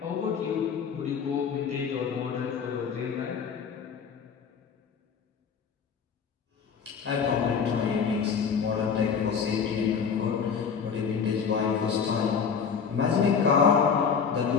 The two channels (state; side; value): quieter; right; 6.4 dB